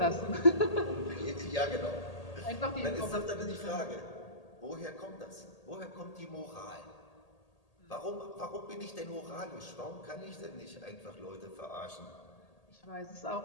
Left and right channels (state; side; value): late; right; 1.8 ms